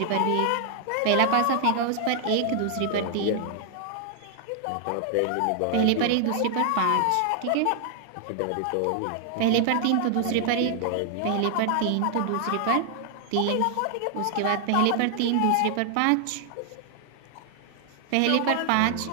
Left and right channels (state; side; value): different; both; correlation 0.00